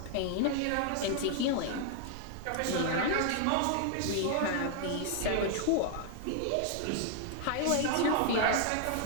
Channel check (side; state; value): both; different; correlation 0.00